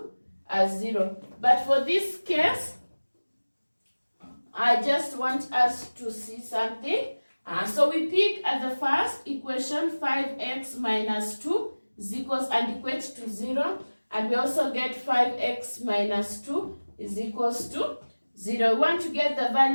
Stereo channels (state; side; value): inverted; both; correlation -1.00